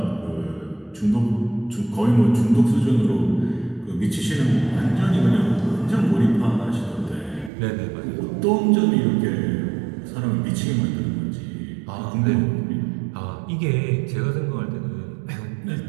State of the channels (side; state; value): left; drops out; at 7.5 s